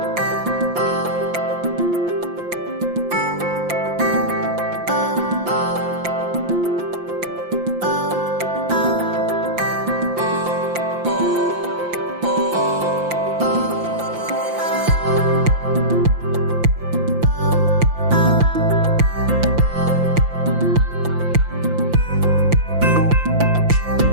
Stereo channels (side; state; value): left; late; 5.8 ms